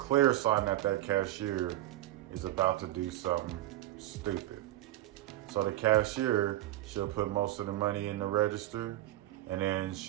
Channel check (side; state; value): left; quieter; 15.0 dB